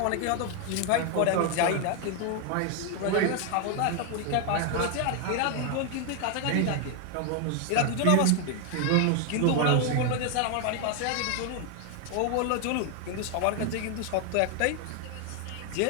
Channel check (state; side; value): different; both; correlation 0.00